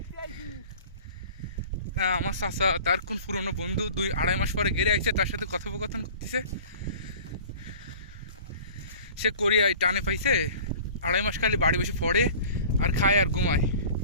আমার চাচা, তার কোন পুরনো বন্ধু 2-2.5 মাস পরে গেড়ে আইছে, তার সাথে কথোপকথন করতেছে। সে কোরিয়ায় টানে পাইছে, 2.5 মাস খালি বাড়ি বসে পড়ে আর খায় আর ঘুমায়।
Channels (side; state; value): both; inverted; correlation -0.43